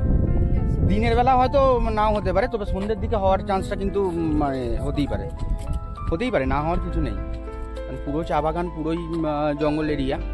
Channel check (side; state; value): both; identical; correlation 1.00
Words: বেরিয়ে আসে। দিনের বেলা হয়তো নাও হতে পারে, তবে সন্ধ্যের দিকে হওয়ার চান্সটা কিন্তু মানে হতেই পারে, না হওয়ার কিছু নেই। মানে পুরো চা বাগান, পুরোই জঙ্গল এরিয়া,